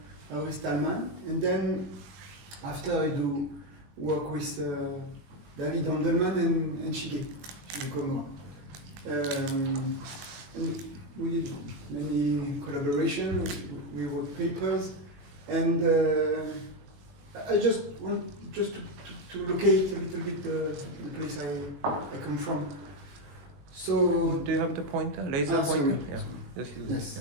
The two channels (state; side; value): late; left; 21 ms